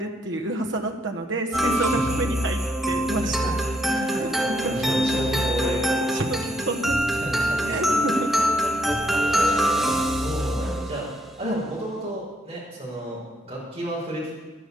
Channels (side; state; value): both; normal; correlation 0.74